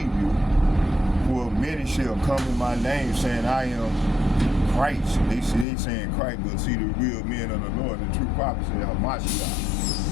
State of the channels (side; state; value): right; drops out; at 5.7 s